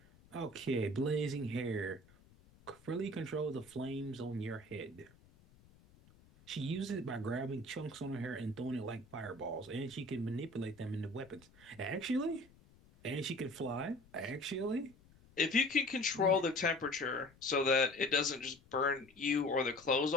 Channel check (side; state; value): left; noise; rumble, 26 dB below the sound